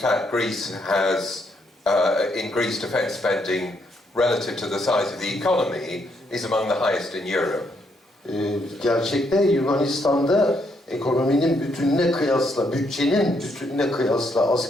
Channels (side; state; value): both; normal; correlation 0.75